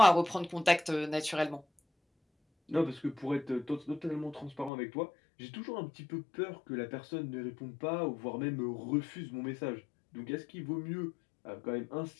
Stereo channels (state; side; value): drops out; right; at 4.7 s